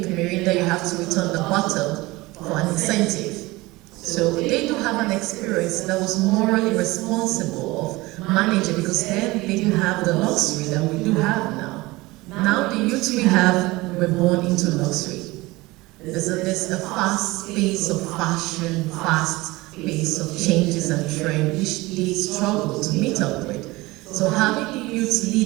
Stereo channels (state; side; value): quieter; left; 21.1 dB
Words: Mirinda, you have to return the bottle for an incentive. So they do have an experience that was morally responsible of managing, because then they didn't have the luxury that we do have now. Now the youth we have were born into luxury. There's a fast pace of fashion, fast pace of changes and trend, which they struggle to meet up with. So having the youth